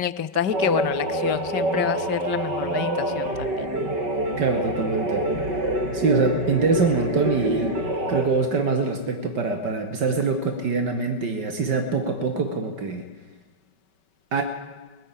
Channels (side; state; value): left; late; 5.2 ms